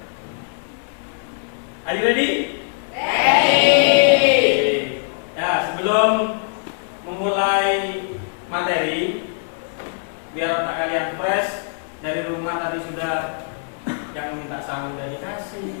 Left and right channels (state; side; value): silent; right; digital silence